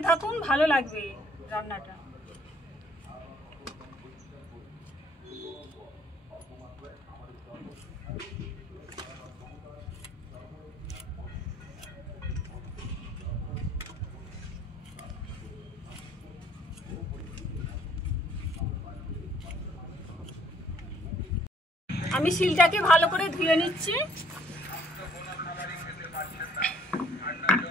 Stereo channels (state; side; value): normal; both; correlation 0.62